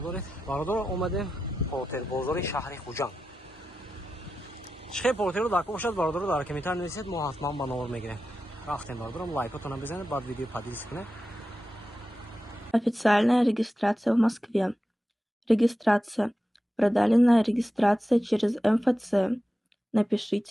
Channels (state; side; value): normal; both; correlation 0.91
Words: доред. Бародор омадем портер бозори шаҳри Хуҷанд. Чихе портеро дар ко бошад, бародоро дар комментар нависед, мо ҳатман ба номер мегирем. Рафтем бародорам, лайкотона бизанед, баъд видео поделитесь кунед. Официальная регистрация в Москве. Регистрация. Продленная регистрация через МФЦ.